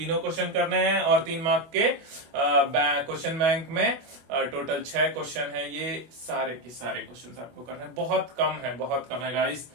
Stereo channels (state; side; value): late; left; 25 ms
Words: क्वेश्चन करने हैं. और 3 मार्क के क्वेश्चन बैंक में टोटल 6 क्वेश्चन है. ये सारे के सारे क्वेश्चन आपको करने हैं. बहुत कम है गाइस.